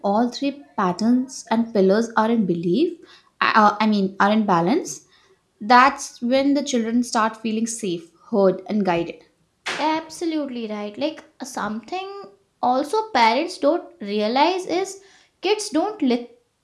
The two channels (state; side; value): identical; both; correlation 1.00